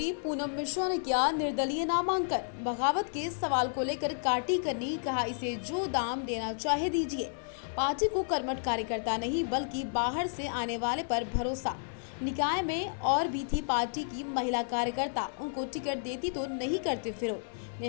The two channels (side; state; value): right; silent; 57 dB below the other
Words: पूनम मिश्रा ने किया निर्दलीय नामांकन। बगावत के सवाल को लेकर काटी करनी, कहा इसे जो दाम देना चाहे दीजिए। पार्टी को कर्मठ कार्यकर्ता नहीं बल्कि बाहर से आने वाले पर भरोसा। निकाय में और भी थी पार्टी की महिला कार्यकर्ता, उनको टिकट देती तो नहीं करते विरोध।